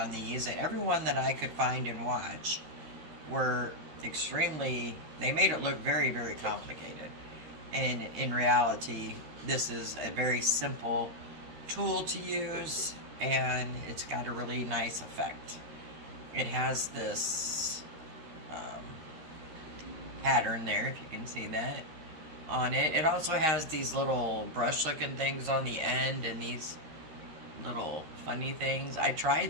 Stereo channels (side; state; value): left; late; 13 ms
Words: these, and everyone that I could find and watch were they made it look very, very complicated. And in reality, this is a very simple tool to use, and it's got a really nice effect. It has this pattern there, if you can see that, on it. It also has these little brush looking things on the end and these little funny things. I